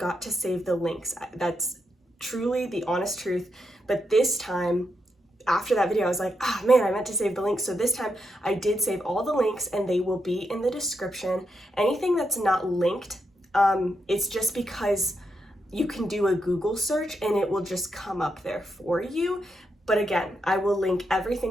to save the links. That's truly the honest truth. But this time, after that video, I was like, man, I meant to save the links. So this time I did save all the links and they will be in the description. Anything that's not linked, it's just because you can do a Google search and it will just come up there for you. But again, I will link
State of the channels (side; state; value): both; normal; correlation 0.83